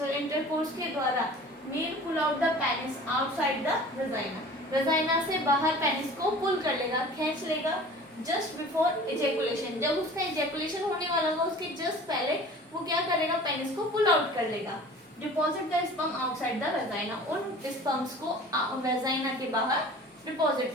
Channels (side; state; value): both; normal; correlation 0.43